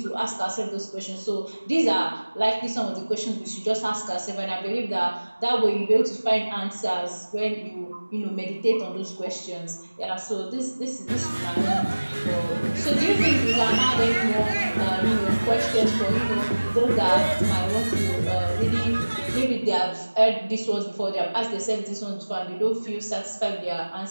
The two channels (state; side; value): inverted; both; correlation -1.00